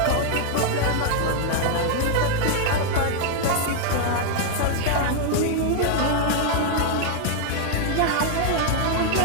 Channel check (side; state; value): both; different; correlation 0.00